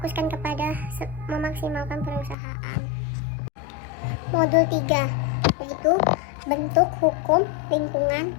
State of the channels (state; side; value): drops out; right; at 2.4 s